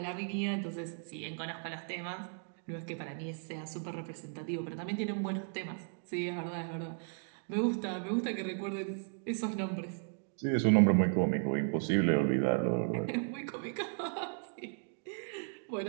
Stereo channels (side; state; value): left; silent; 54 dB below the other